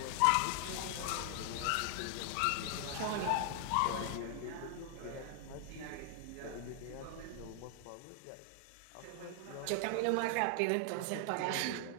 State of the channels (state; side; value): different; both; correlation 0.00